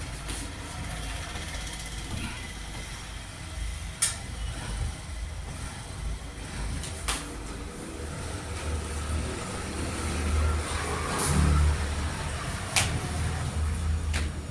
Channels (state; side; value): identical; both; correlation 1.00